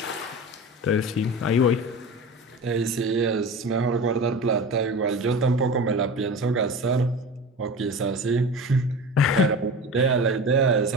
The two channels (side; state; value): both; normal; correlation 0.32